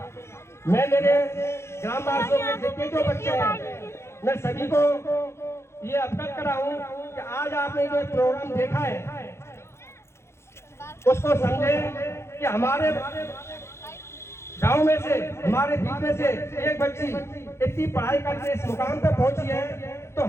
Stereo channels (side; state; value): right; late; 0.13 ms